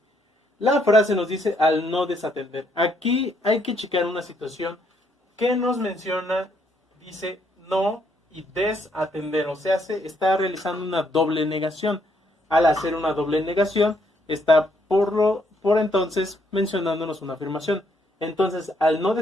La frase nos dice al no desatender. Aquí hay que checar una situación que nos menciona, dice no y desatender, o sea, se está realizando una doble negación. Al hacer una doble negación, está por entonces mencionándonos una afirmación. Entonces, al no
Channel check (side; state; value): both; normal; correlation 0.72